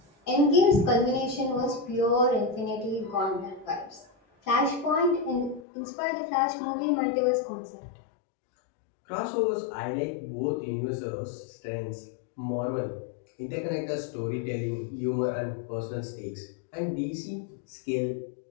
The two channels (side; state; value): right; drops out; at 5.6 s